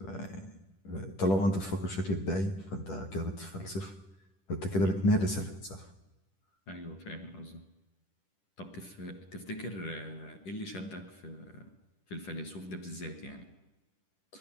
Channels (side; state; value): right; late; 10 ms